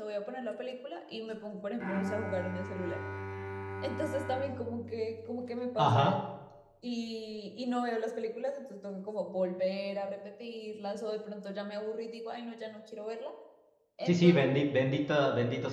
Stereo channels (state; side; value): identical; both; correlation 1.00